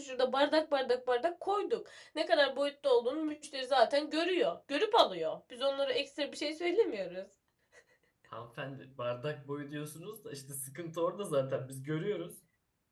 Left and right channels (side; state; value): both; identical; correlation 1.00